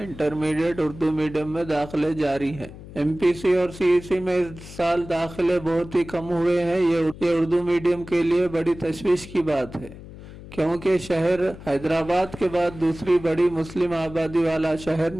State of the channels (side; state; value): left; noise; hum, 16 dB below the sound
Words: इंटरमीडिएट उर्दू मीडियम में दाखिले जारी हैं। एमपीसी और सीईसी में इस साल दाखिले बहुत ही कम हुए हैं। ये उर्दू मीडियम के लिए बड़ी तशवीश की बात है, क्योंकि शहर हैदराबाद के बाद दूसरी बड़ी मुस्लिम आबादी वाला शहर